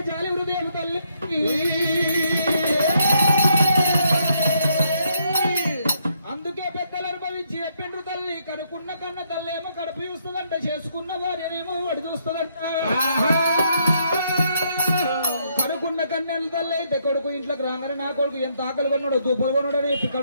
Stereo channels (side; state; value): both; inverted; correlation -0.73